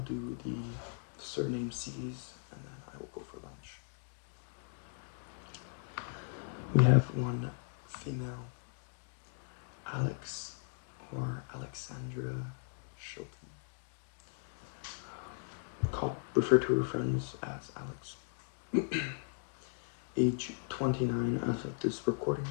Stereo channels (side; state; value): right; silent; digital silence